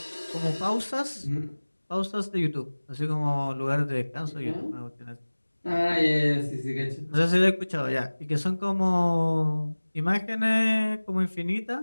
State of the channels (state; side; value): inverted; both; correlation -1.00